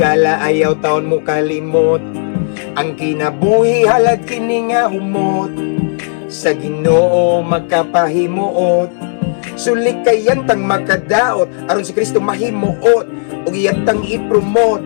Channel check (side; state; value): right; silent; digital silence